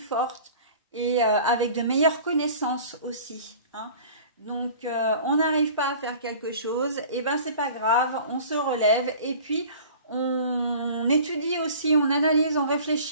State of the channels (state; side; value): inverted; both; correlation -0.45